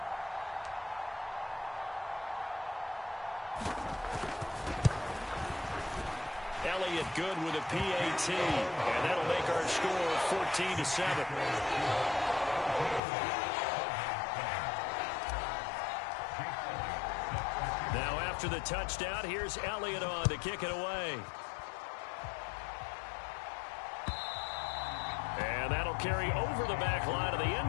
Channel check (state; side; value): drops out; right; at 13.0 s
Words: Elliott good with a PAT, and that'll make our score 14-7. Now after the touchdown, here's Elliott on to kick it away. And that'll carry over the back line of the